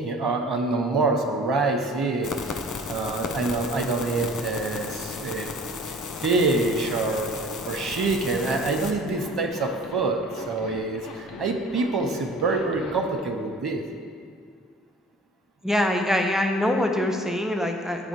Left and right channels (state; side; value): normal; both; correlation 0.47